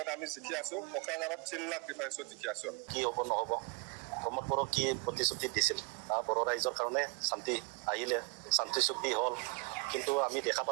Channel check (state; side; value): quieter; left; 31.4 dB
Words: আমি জিকি আছো কোকৰাঝাৰত 3 লাখ ডিফাৰেন্সত জিকি আছো কি হ'ব নহ'ব প্ৰমোদ বড়ো কি প্ৰতিশ্ৰুতি দিছিল বড়ো ৰাইজৰ কাৰণে শান্তি আহিলে শান্তি চুক্তি হ'ল কিন্তু আমি দেখা